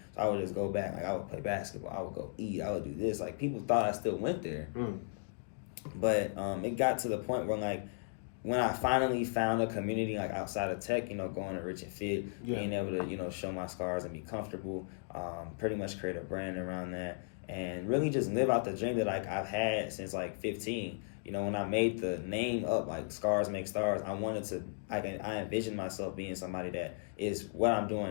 So I would just go back. I would play basketball, I would go eat, I would do this. People thought I still went there. But it got to the point where when I finally found a community outside of tech, going to Rich and Fit, being able to show my scars and be comfortable, pretty much create a brand around that, and really just live out the dream that I've had since 15. When I made the name up, Scars Make Stars, I envisioned myself being somebody that is what I'm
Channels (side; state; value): right; silent; digital silence